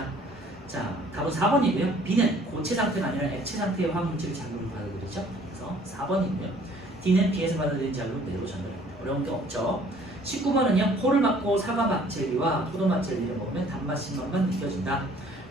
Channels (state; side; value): normal; both; correlation 0.56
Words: 자, 답은 4번이고요. B는 고체 상태가 아니라 액체 상태의 화학물질을 자극을 받아들이죠. 그래서 4번이고요. D는 B에서 받아들인 자극을 뇌로 전달합니다. 어려운 게 없죠. 19번은요. 코를 막고 사과맛 젤리와 포도맛 젤리를 먹으면 단맛, 신맛만 느껴진다.